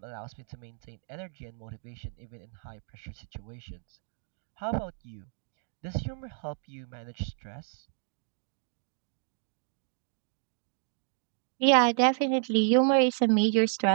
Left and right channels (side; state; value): left; silent; 57 dB below the other